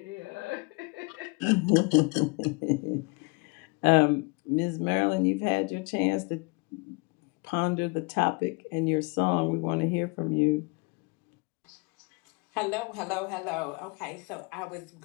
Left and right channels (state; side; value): quieter; right; 30.2 dB